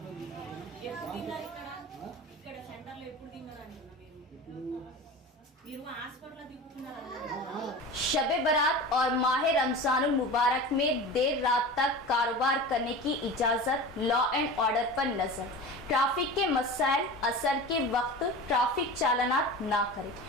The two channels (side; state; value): both; normal; correlation 0.32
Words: ఇక్కడ సెంటర్లో ఎప్పుడు తిన్నారు అంటున్నా మీరు హాస్పిటల్లో తిప్పుకున్నారు. शब बारात और माह रमजानुल मुबारक में देर रात तक कारोबार करने की इजाज़त, लॉ एंड ऑर्डर पर नज़र, ट्रैफिक के मसाइल, असर के वक्त ट्रैफिक चालानात ना करें,